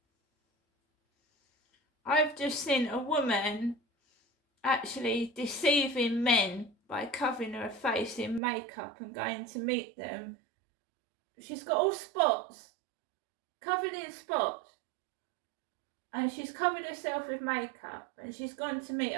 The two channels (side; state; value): left; drops out; at 8.4 s